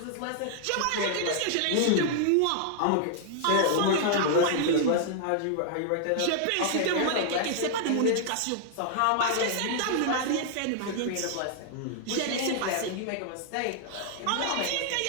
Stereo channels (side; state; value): both; different; correlation -0.01